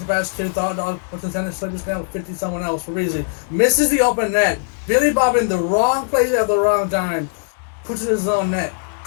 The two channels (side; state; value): right; silent; digital silence